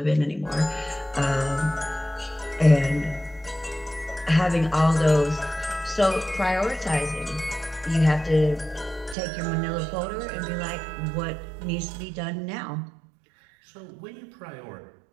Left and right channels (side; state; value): left; drops out; at 9.2 s